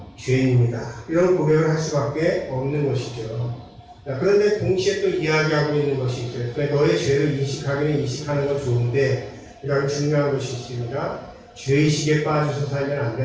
죄인입니다. 이런 고백을 할 수밖에 없는 것이죠. 그런데 동시에 또 이야기하고 있는 것이 있어요. 너의 죄를 인식하는 건 좋은데 이런 중요한 것이 있습니다. 죄의식에 빠져서 살면 안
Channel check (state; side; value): identical; both; correlation 1.00